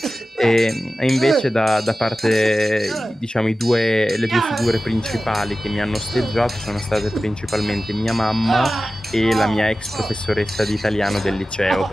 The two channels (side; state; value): both; normal; correlation 0.95